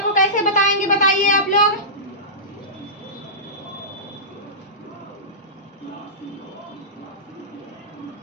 को कैसे बताएंगे? बताइए आप लोग।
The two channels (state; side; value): normal; both; correlation -0.19